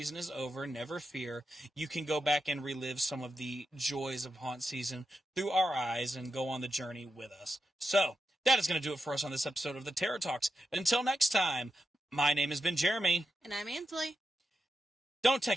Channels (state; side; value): normal; both; correlation 0.87